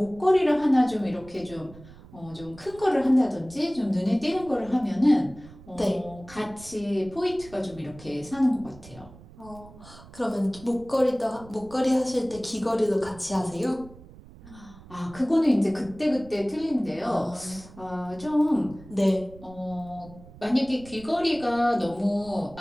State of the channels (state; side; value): noise; right; rumble, 20 dB below the sound